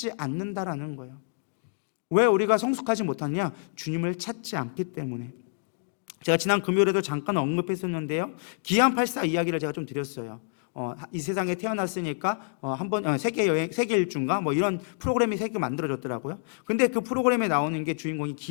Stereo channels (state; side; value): silent; right; digital silence